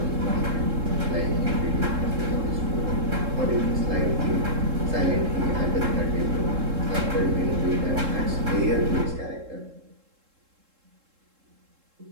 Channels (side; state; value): left; late; 3.7 ms